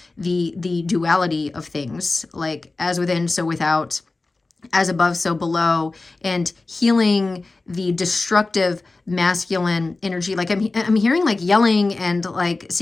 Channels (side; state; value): right; quieter; 3.4 dB